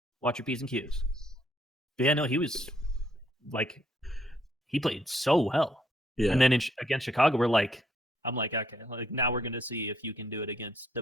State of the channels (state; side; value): normal; both; correlation 0.69